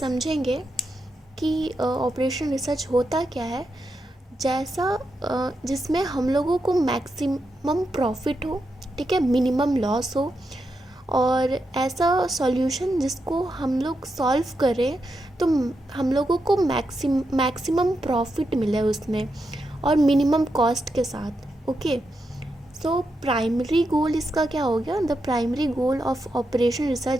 कि operation research होता क्या है। जिसमें हम लोगों को मैक्सिमम प्रॉफिट हो, ठीक है, मिनिमम लॉस हो, और ऐसा सॉल्यूशन जिसको हम लोग सॉल्व करें तो हम लोगों को मैक्सिमम प्रॉफिट मिले उसमें और मिनिमम कॉस्ट के साथ। ओके, प्राइमरी गोल इसका क्या हो गया? The primary goal of operation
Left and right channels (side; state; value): both; normal; correlation 0.85